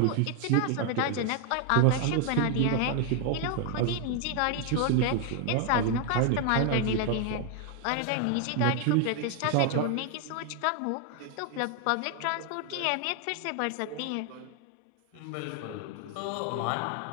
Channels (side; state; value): both; different; correlation 0.00